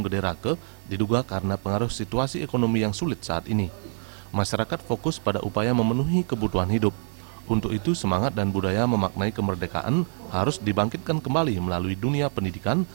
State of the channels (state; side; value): silent; left; 61 dB below the other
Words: Gede Rake diduga karena pengaruh situasi ekonomi yang sulit saat ini. Masyarakat fokus pada upaya memenuhi kebutuhan hidup. Untuk itu semangat dan budaya memaknai kemerdekaan harus dibangkitkan kembali melalui dunia pendidikan